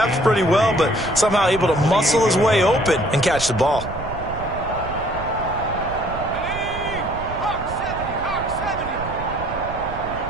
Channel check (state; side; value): noise; right; rumble, 10 dB below the sound